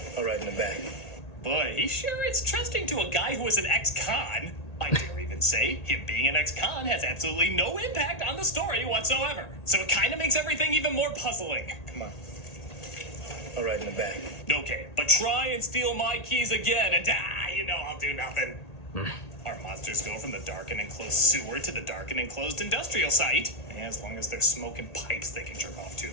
All right, in the back. Boy, he sure is trusting to a guy who was an ex-con. I dare even say him being an ex-con has absolutely no impact on the story whatsoever. So it kind of makes everything even more puzzling. Come on. All right, in the back. Okay, but try and steal my keys again, and I'll do nothing. Our monsters go from the dark and enclosed sewer to the dark and enclosed industrial site. And as long as they're smoking pipes they can jerk off to,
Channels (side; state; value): right; late; 1.8 ms